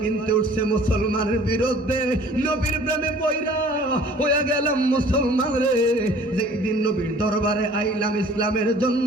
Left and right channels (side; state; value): both; normal; correlation 0.51